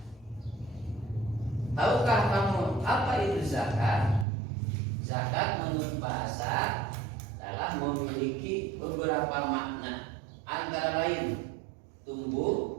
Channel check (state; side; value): drops out; left; at 4.2 s